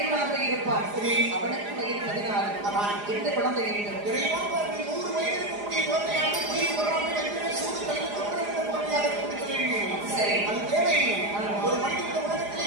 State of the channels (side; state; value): left; late; 4.9 ms